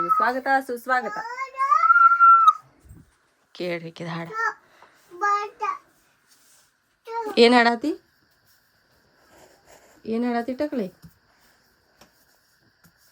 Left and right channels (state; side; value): identical; both; correlation 1.00